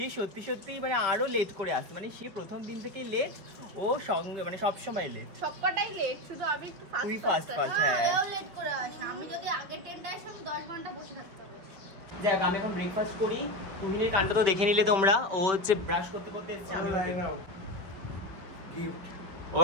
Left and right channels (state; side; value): late; left; 5.5 ms